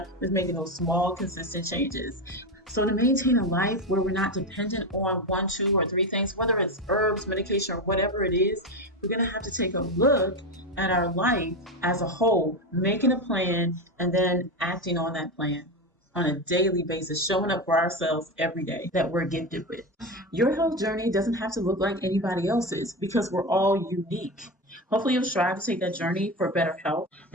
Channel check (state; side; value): normal; both; correlation 0.17